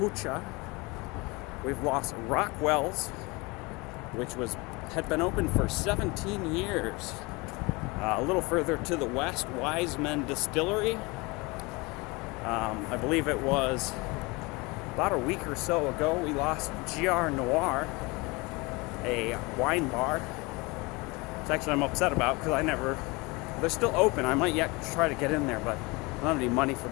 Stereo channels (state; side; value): quieter; right; 25.5 dB